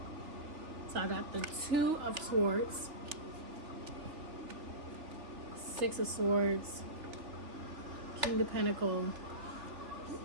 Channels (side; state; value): left; late; 3.3 ms